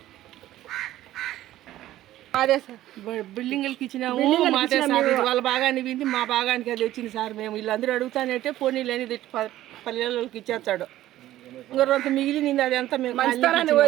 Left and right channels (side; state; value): left; quieter; 14.3 dB